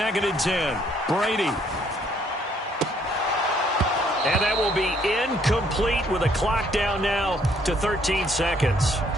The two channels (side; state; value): both; normal; correlation 0.66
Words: and 10. Brady. And that will be incomplete with a clock down now to 13 seconds.